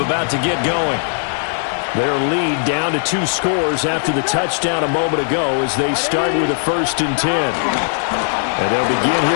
to get going. Their lead down to 2 scores after the touchdown a moment ago as they start with a 1st and 10. And they'll begin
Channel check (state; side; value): silent; right; digital silence